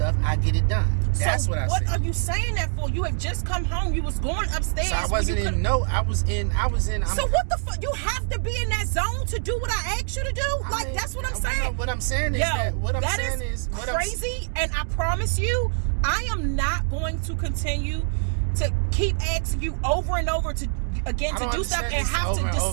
I get it done. That's what I said. What are you saying that for? You had just come home. You was going upstairs. So I wasn't in. No, I was in. So what the fuck? You have to be in that zone to do what I asked you to do. That's what I'm saying. What I'm saying is that is crazy. And I promise you, I am not going to continue to keep asking you over and over to do stuff and have to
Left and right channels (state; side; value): silent; left; digital silence